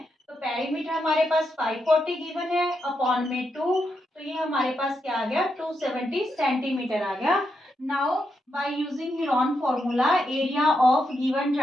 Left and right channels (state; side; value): normal; both; correlation 0.83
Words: तो पेरीमीटर हमारे पास 540 गिवन है अपॉन में 2, तो ये हमारे पास क्या आ गया 270 सेंटीमीटर आ गया। Now by using Heron formula, area of given